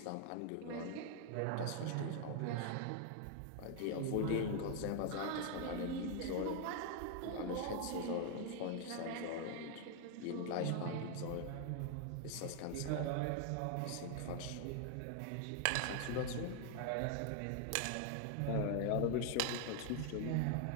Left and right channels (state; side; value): different; both; correlation 0.00